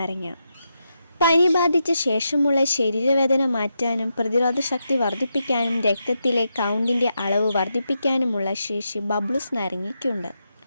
പനി ബാധിച്ച ശേഷമുള്ള ശരീരവേദന മാറ്റാനും പ്രതിരോധശക്തി വർദ്ധിപ്പിക്കാനും രക്തത്തിലെ കൗണ്ടിൻ്റെ അളവ് വർദ്ധിപ്പിക്കാനുമുള്ള ശേഷി ബബ്ലൂസ് നാരങ്ങയ്ക്കുണ്ട്.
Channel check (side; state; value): both; inverted; correlation -0.85